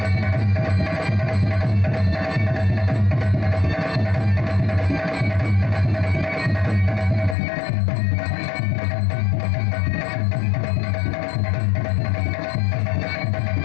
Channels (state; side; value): drops out; right; at 7.4 s